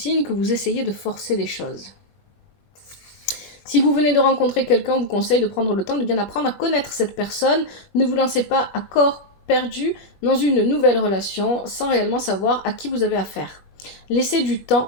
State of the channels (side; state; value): right; late; 21 ms